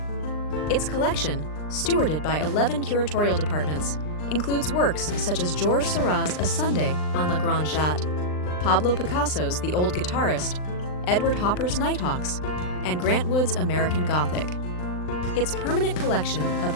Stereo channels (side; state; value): right; late; 39 ms